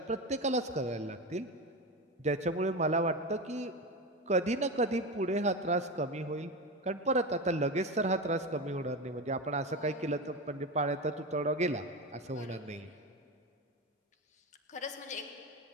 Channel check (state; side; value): normal; both; correlation 0.21